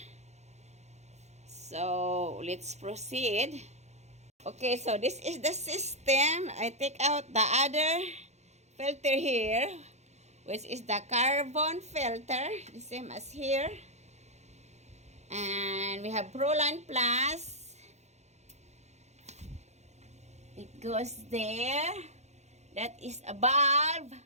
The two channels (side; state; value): left; late; 0.33 ms